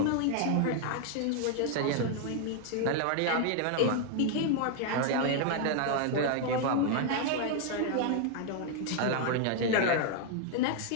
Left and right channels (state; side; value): different; both; correlation 0.00